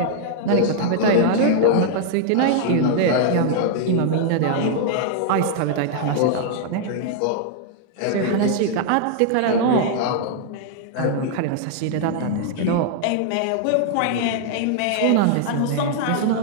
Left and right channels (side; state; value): both; different; correlation 0.00